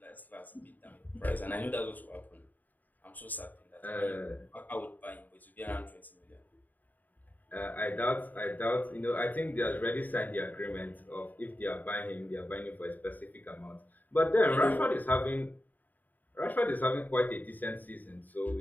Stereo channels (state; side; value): late; right; 0.085 ms